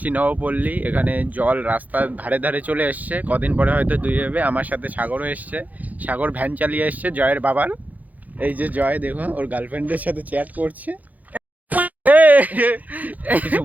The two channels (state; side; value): late; left; 0.079 ms